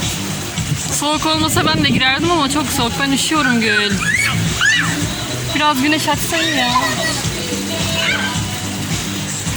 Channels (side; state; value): both; identical; correlation 1.00